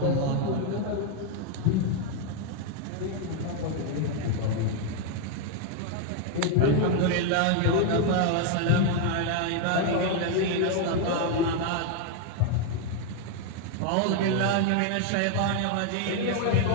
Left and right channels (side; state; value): both; different; correlation 0.00